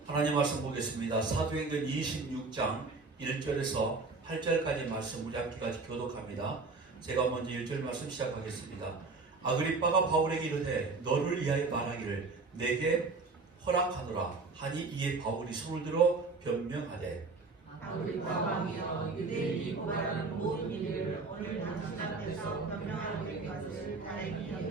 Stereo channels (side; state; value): left; quieter; 4.0 dB